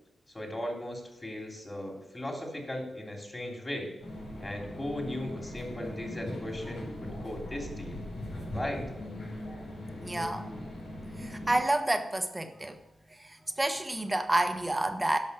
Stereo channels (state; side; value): normal; both; correlation 0.95